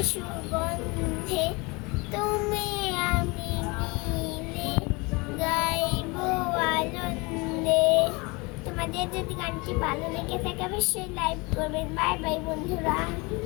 সুগন্ধে তুমি আমি মিলে গাইব আনন্দে। তোমাদের যদি গানটি ভালো লেগে থাকে অবশ্যই লাইক করবেন। বাই বাই বন্ধুরা।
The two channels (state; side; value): quieter; right; 26.6 dB